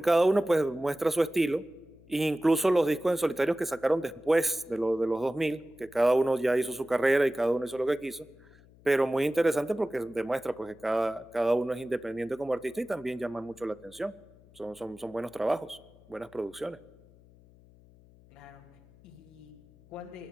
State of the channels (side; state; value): left; noise; hum, 26 dB below the sound